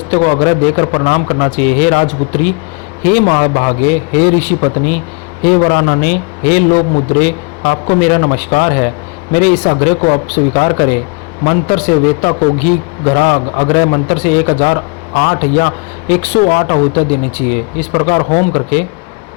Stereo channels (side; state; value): right; quieter; 32.3 dB